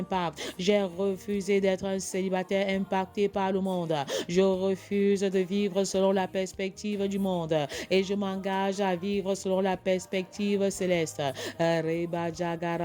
J'ai refusé d'être un célibataire impacté par le monde. Je refuse de vivre selon la perspective du monde et je m'engage à vivre selon la perspective céleste.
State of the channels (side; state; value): both; identical; correlation 1.00